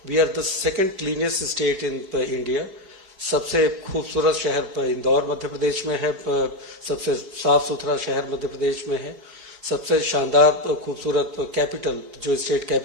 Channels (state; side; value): late; left; 4.8 ms